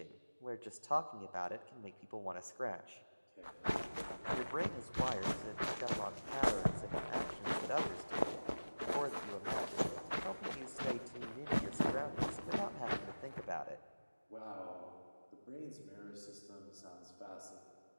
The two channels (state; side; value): inverted; both; correlation -1.00